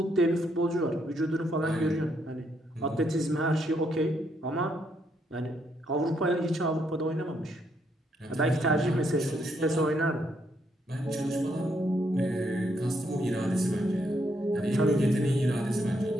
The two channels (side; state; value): both; normal; correlation 0.75